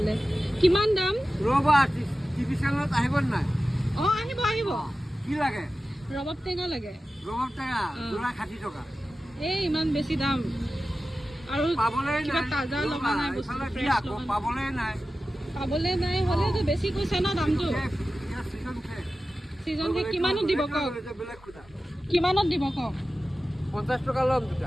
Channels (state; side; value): normal; both; correlation 0.94